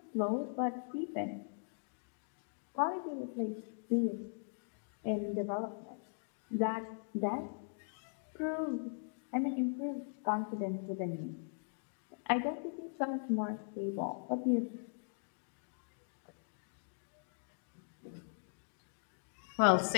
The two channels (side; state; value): right; silent; digital silence